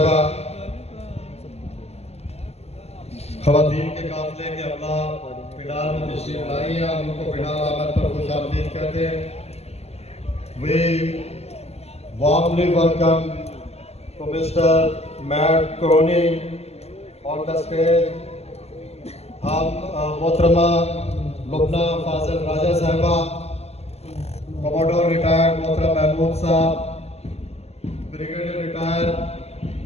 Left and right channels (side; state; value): right; late; 0.30 ms